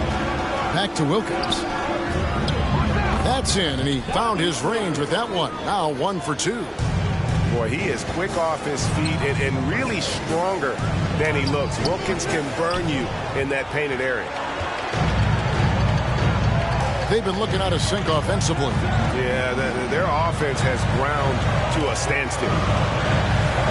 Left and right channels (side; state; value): both; identical; correlation 1.00